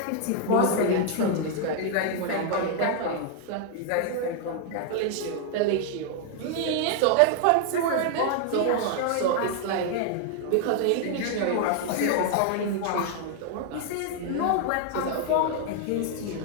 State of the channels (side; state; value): both; different; correlation 0.00